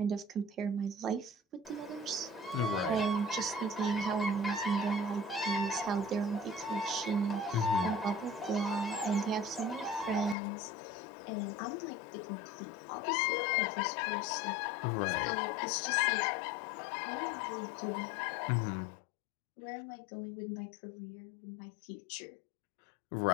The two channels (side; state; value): right; drops out; at 10.4 s